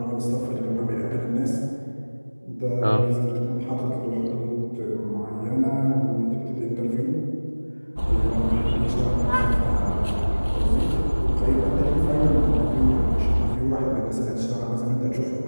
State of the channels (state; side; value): inverted; both; correlation -1.00